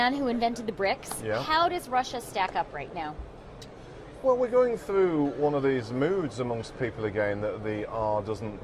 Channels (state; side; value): identical; both; correlation 1.00